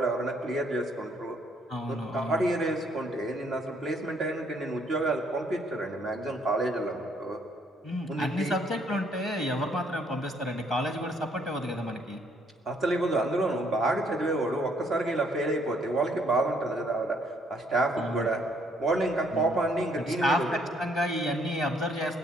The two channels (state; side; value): normal; both; correlation 0.67